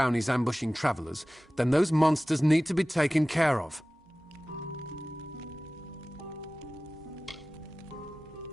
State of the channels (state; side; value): normal; both; correlation 0.97